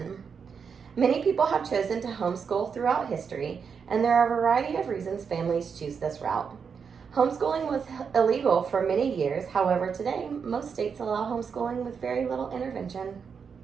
Many people have chosen to homeschool throughout history, and there are a variety of reasons families choose this route. Homeschooling was illegal for many years, however, today most states allow homeschooling with very little intervention.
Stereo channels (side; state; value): left; quieter; 6.3 dB